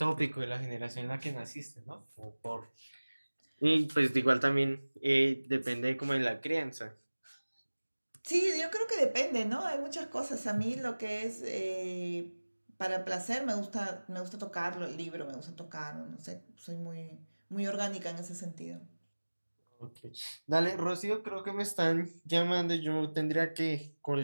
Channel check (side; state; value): both; inverted; correlation -1.00